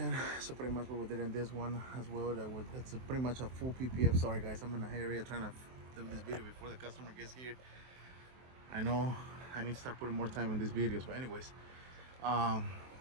So pretty much what we did in this one as well, it's pretty much a full PPF. Sorry guys, I'm in a area trying to do this video before the customer gets here. I know I need to start putting more time in these videos, but anyways,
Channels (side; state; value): left; late; 23 ms